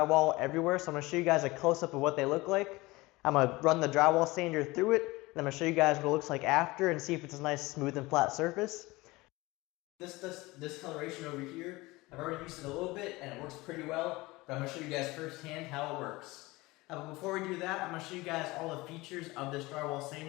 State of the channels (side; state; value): right; quieter; 21.5 dB